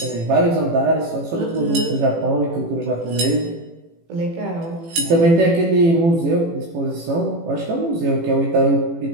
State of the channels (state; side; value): late; left; 18 ms